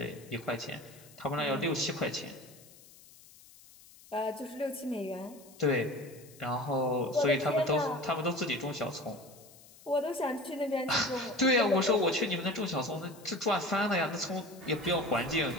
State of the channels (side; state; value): left; noise; hiss, 23 dB below the sound